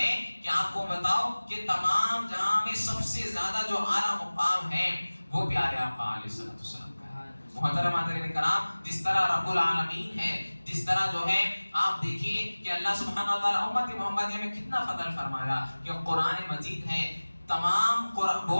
کہ آپ کو بتاؤ کہ تمام جہاں میں سب سے زیادہ جو اعلیٰ مقام ہے وہ پیارے آقا علیہ السلام کا ہے. محترم حضرات کرام, جس طرح رب العالمین ہے, جس طرح جو ہے آپ دیکھیے کہ اللہ سبحانہ وتعالی امت محمدیہ میں کتنا فضل فرمایا کہ قرآن مجید ہے. تمام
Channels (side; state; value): both; inverted; correlation -1.00